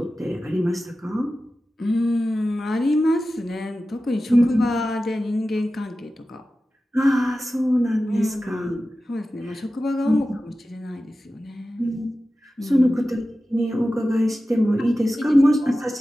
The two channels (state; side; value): normal; both; correlation 0.94